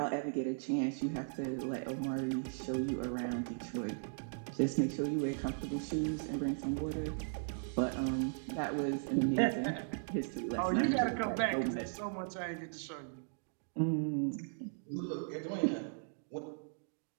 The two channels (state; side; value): silent; left; digital silence